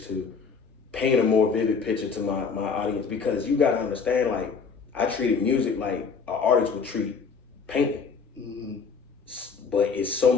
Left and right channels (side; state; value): right; quieter; 5.4 dB